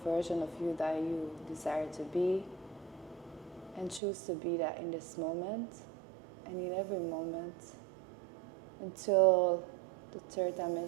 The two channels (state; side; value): drops out; left; at 4.0 s